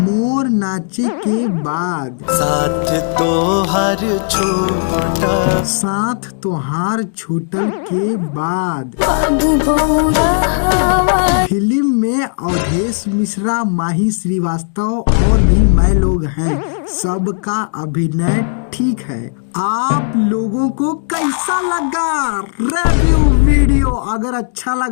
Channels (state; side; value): silent; right; digital silence